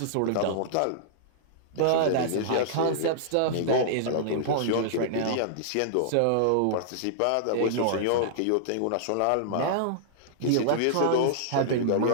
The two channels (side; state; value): both; different; correlation -0.02